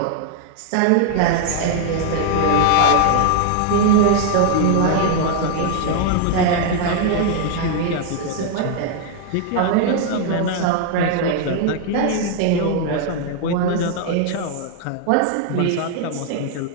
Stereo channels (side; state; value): both; different; correlation 0.00